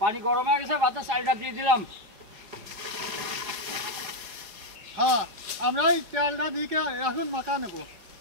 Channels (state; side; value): late; left; 4.6 ms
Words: গরম হয়ে গেছে ভাতের চালটা দিয়ে দিলাম হ্যাঁ আমরা এই চালটা দিয়ে এখন মাখা নেবো